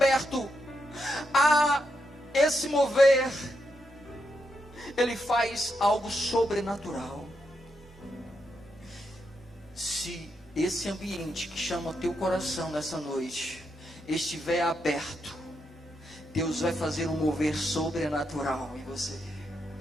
há esse mover, ele faz algo sobrenatural. Se esse ambiente que chama o teu coração nessa noite estiver aberto, Deus vai fazer um mover sobrenatural em você.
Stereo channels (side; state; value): both; normal; correlation 0.83